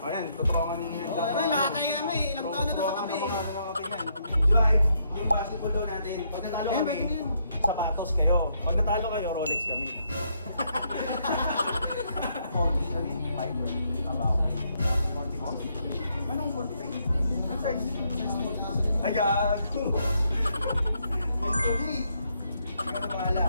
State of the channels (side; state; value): both; inverted; correlation -0.75